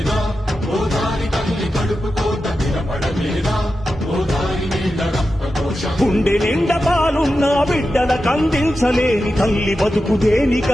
గుండె నిండా పాలున్న బిడ్డల కందించలేని తల్లి బతుకు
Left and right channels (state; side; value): normal; both; correlation 0.91